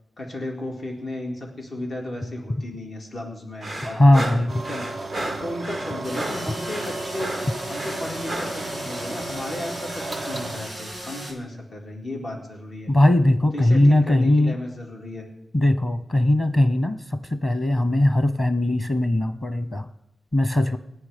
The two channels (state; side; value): normal; both; correlation 0.95